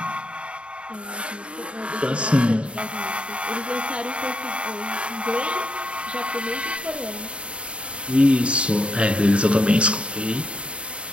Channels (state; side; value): late; left; 0.059 ms